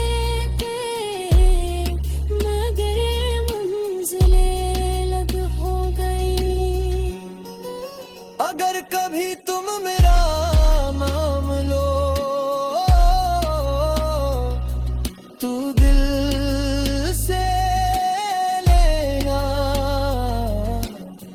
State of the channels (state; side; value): identical; both; correlation 1.00